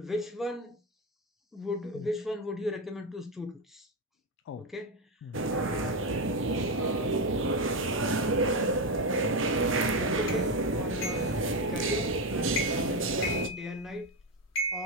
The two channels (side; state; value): both; normal; correlation 0.11